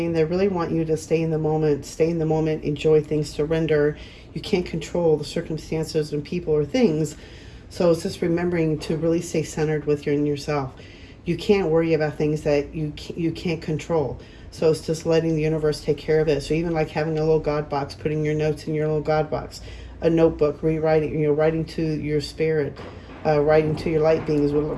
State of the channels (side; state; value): both; identical; correlation 1.00